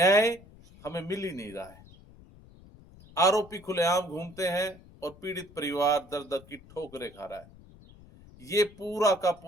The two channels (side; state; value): left; noise; rumble, 22 dB below the sound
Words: हमें मिल ही नहीं रहा है। आरोपी खुलेआम घूमते हैं और पीड़ित परिवार दर दर की ठोकरें खा रहा है। ये पूरा का